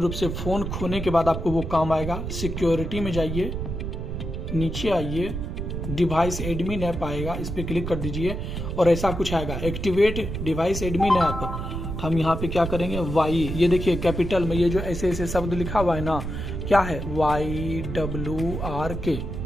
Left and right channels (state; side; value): noise; right; rumble, 5 dB below the sound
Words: से फोन खोने के बाद आपको वो काम आएगा। सिक्योरिटी में जाइए, नीचे आइए, डिवाइस एडमिन ऐप आएगा, इस पर क्लिक कर दीजिए और ऐसा कुछ आएगा, एक्टिवेट डिवाइस एडमिन ऐप। हम यहाँ पे क्या करेंगे, वाई, ये देखिए कैपिटल में ये जो ऐसे ऐसे शब्द लिखा हुआ है ना, क्या है, YWRK,